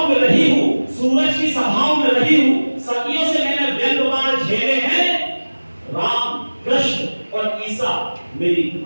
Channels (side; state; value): both; inverted; correlation -1.00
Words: में रही हूं, सूरज की सभाओं में रही हूं, सदियों से मैंने व्यंग्यवार झेले हैं, राम कृष्ण और ईसा मेरी